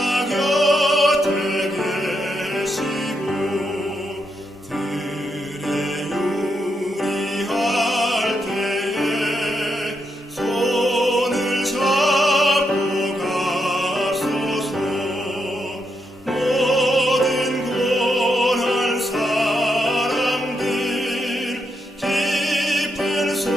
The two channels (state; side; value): normal; both; correlation 0.81